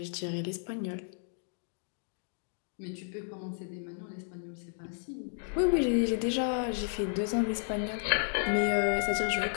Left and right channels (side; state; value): right; silent; digital silence